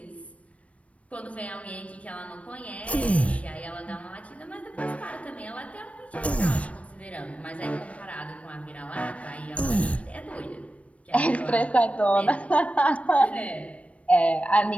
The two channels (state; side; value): late; right; 0.064 ms